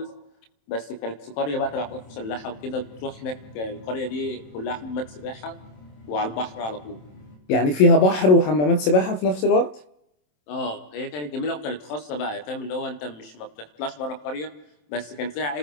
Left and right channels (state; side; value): late; right; 27 ms